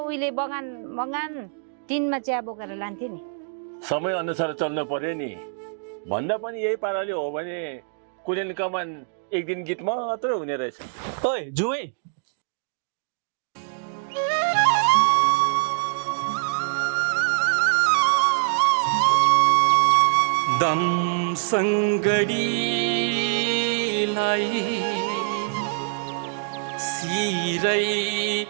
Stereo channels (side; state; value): left; silent; digital silence